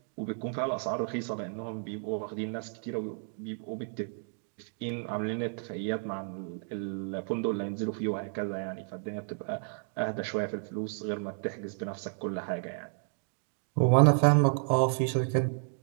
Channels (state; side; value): silent; left; 57 dB below the other